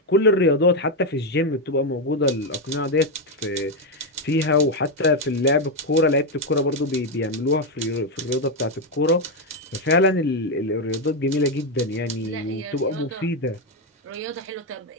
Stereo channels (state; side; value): normal; both; correlation 0.05